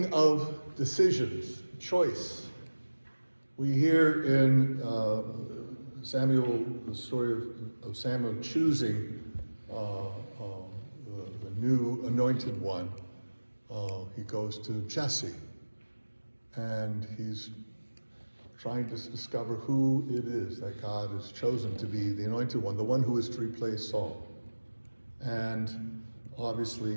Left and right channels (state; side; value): inverted; both; correlation -1.00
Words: of decisions, choice. We hear in Samuel, the story of Samuel choosing the new anointed one. He goes to Jesse, and he's trying to discover who it is that God has chosen to be the anointed one, the one who is to replace Saul. And